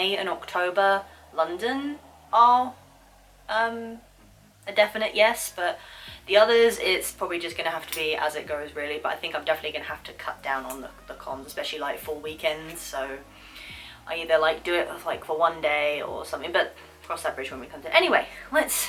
and October, London are a definite yes, but the others, it's probably just going to have to be as it goes really, but I think I'm definitely going to have to cut down on the cons, especially like full weekends, so I either like do it like for one day or something, but cross that bridge when we come to it. Anyway,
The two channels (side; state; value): both; identical; correlation 1.00